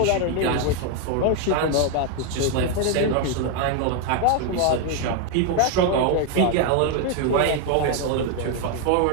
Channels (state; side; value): different; both; correlation 0.01